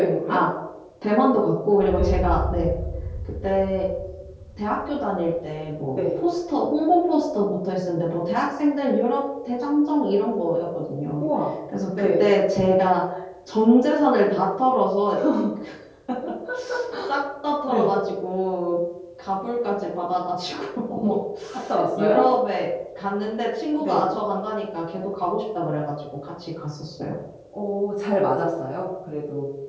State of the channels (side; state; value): both; identical; correlation 1.00